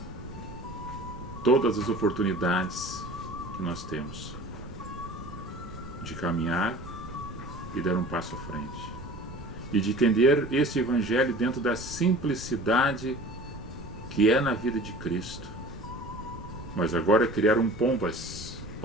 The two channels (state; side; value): noise; right; rumble, 15 dB below the sound